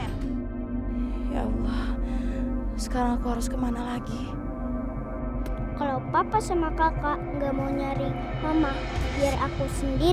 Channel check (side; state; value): both; identical; correlation 1.00